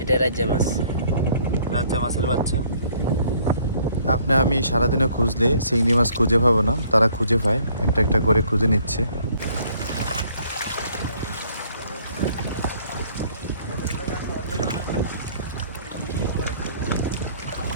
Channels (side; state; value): both; inverted; correlation -0.61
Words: এটা রাজ্জা মাছ। রাজ্জা মাছের বাচ্চা। আপনি আমি সারাদিনে খুঁজলে চিংড়ি মাছ খুঁজে পাবো না, তারা খুঁজে পায়, একটা একটা করে খুঁজে নিচ্ছে।